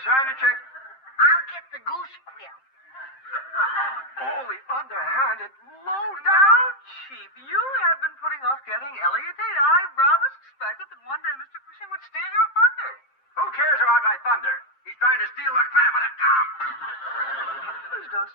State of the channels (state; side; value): late; right; 7.6 ms